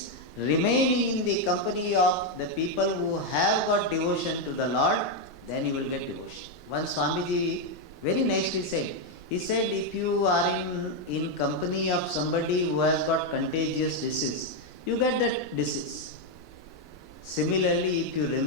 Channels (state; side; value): noise; right; rumble, 22 dB below the sound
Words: remaining in the company of the people who have got devotion to the Lord, then you will get devotion. Once Swamiji very nicely said, he said, if you are in company of somebody who has got contagious disease, you get that disease. Similarly, if you